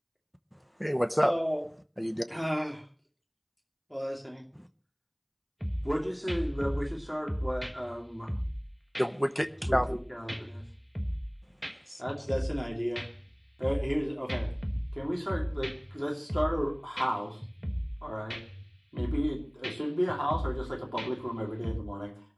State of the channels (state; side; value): identical; both; correlation 1.00